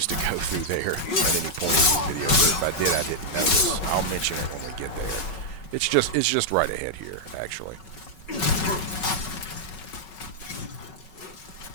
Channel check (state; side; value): late; right; 5.4 ms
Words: to go through there at any point in the video, but if I did, I didn't notice. I'll mention it when we get there. It's just right ahead here, actually.